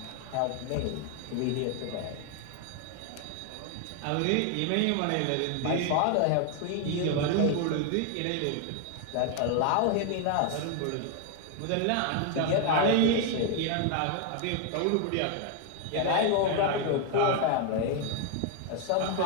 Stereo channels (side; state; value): both; different; correlation 0.00